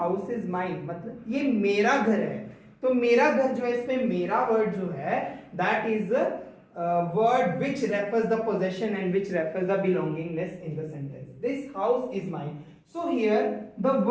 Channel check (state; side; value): identical; both; correlation 1.00